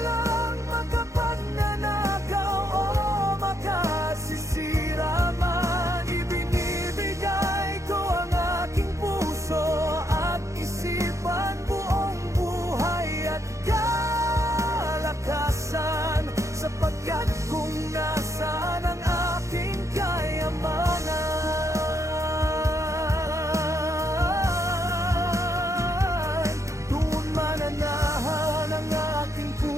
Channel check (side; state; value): left; late; 0.15 ms